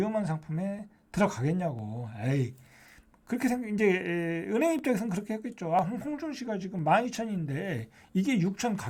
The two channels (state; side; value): identical; both; correlation 1.00